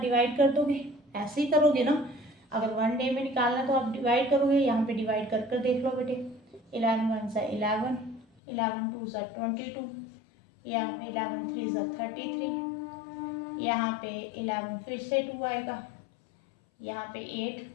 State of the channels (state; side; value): drops out; right; at 8.2 s